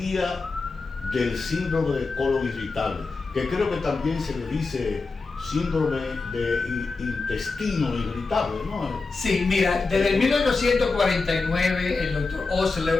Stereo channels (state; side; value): quieter; right; 4.0 dB